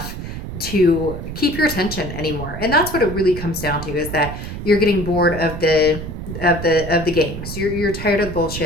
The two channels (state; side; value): noise; right; rumble, 8 dB below the sound